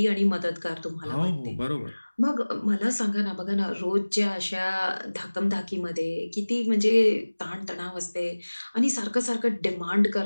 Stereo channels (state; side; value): inverted; both; correlation -1.00